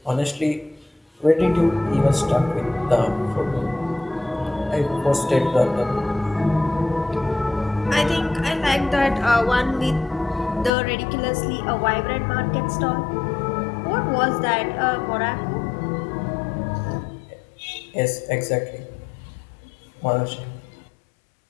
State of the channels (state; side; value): drops out; right; at 10.7 s